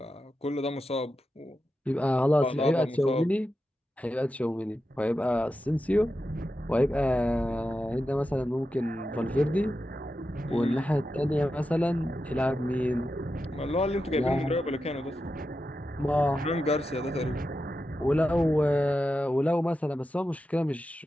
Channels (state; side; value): normal; both; correlation 0.90